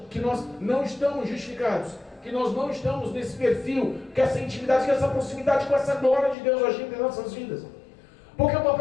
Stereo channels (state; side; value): drops out; right; at 6.4 s